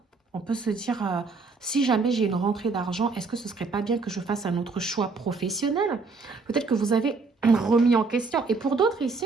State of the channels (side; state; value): left; quieter; 4.2 dB